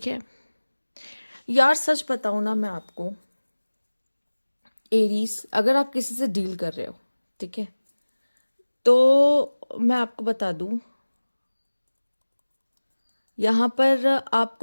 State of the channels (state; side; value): inverted; both; correlation -1.00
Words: है यार, सच बताऊँ ना मैं आपको, एरीज, अगर आप किसी से डील कर रहे हो, ठीक है, तो मैं आपको बता दूं, यहाँ पर